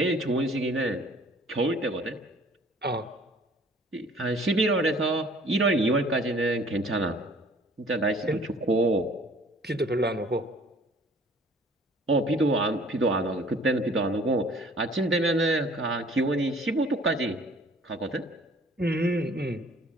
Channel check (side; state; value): both; normal; correlation 0.54